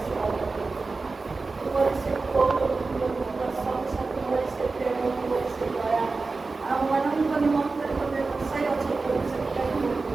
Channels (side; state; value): left; quieter; 3.9 dB